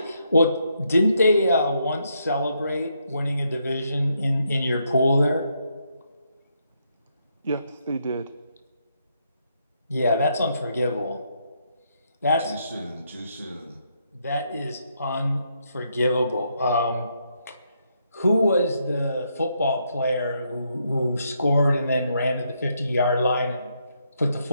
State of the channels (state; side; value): inverted; both; correlation -0.77